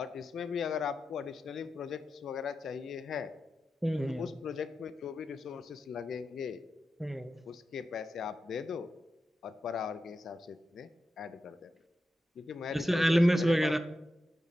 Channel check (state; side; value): normal; both; correlation 0.90